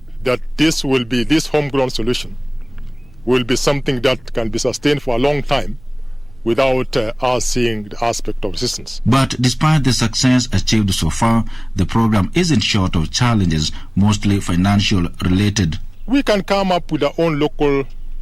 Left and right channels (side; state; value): right; noise; rumble, 25 dB below the sound